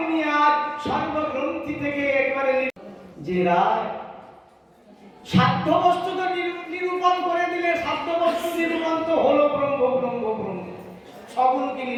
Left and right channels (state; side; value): identical; both; correlation 1.00